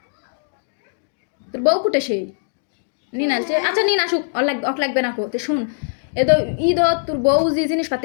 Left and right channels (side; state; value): right; silent; digital silence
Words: তোর বউ কুটে সেই নিন আলছে আচ্ছা নিন আসুক অক লাগবে না কো তো শুন এ তো ঈদ তোর বউ যে